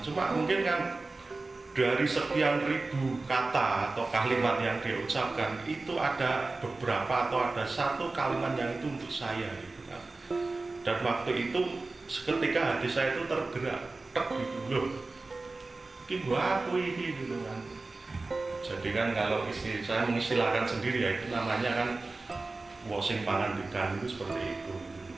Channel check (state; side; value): quieter; left; 3.4 dB